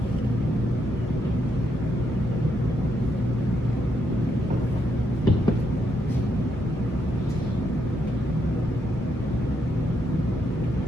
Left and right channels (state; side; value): normal; both; correlation 0.78